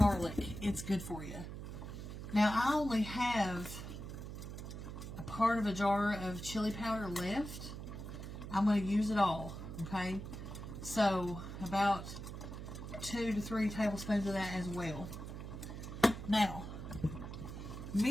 It's good for you. Now, I only have a part of a jar of chili powder left. I'm going to use it all. Okay? So, about 2 to 3 tablespoons of that as well. Now,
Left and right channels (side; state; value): right; noise; hum, 8 dB below the sound